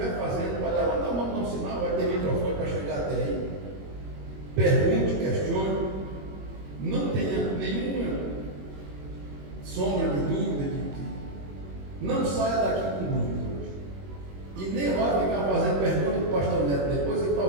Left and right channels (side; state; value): left; late; 21 ms